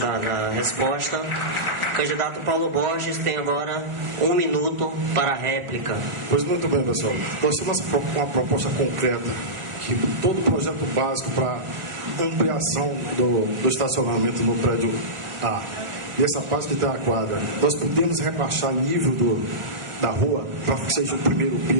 resposta. Candidato Paulo Borges tem agora 1 minuto para a réplica. Pois muito bem, pessoal. Nós temos uma proposta concreta, que todo o projeto básico para ampliação do estacionamento no prédio A, e essa parte que está a quadra, nós podemos rebaixar nível da rua para que seja o primeiro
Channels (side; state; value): left; late; 1.5 ms